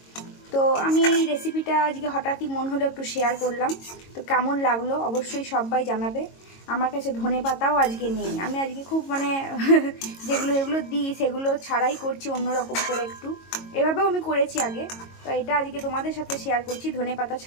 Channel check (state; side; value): late; right; 22 ms